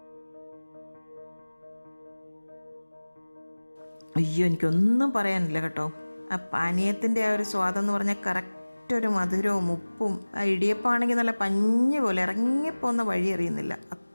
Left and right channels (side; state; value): both; inverted; correlation -1.00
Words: അയ്യോ, എനിക്കൊന്നും പറയാനില്ല കേട്ടോ. ആ പാനീയത്തിൻ്റെ ആ ഒരു സ്വാദെന്ന് പറഞ്ഞാൽ കറക്റ്റ് ഒരു മധുരവും ഉപ്പും. ആ ഇടിയപ്പമാണെങ്കിൽ നല്ല പഞ്ഞി പോലെ ഇറങ്ങിപ്പോകുന്ന വഴി അറിയുന്നില്ല,